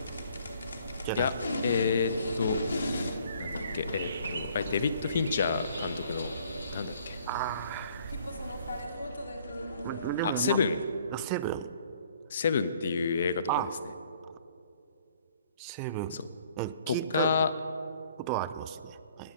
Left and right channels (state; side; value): inverted; both; correlation -0.59